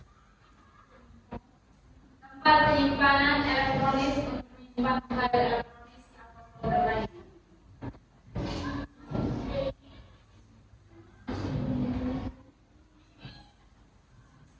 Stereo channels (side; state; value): both; identical; correlation 1.00